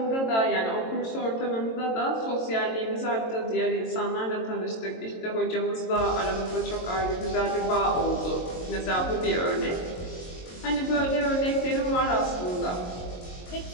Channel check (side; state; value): right; late; 22 ms